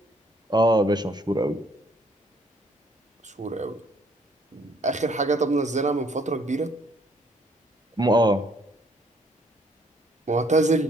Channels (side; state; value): both; normal; correlation 0.64